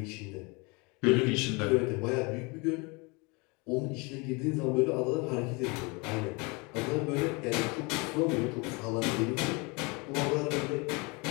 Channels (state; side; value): quieter; right; 28.5 dB